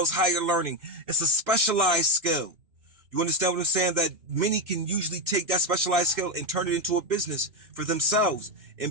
higher learning. It's a specialized skill. You understand what I'm saying? That many can usually take that specialized skill and turn it into a business for themselves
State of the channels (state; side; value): late; left; 2.6 ms